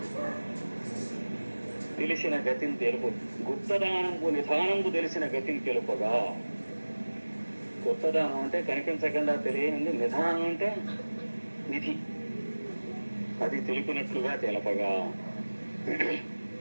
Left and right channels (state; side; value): inverted; both; correlation -1.00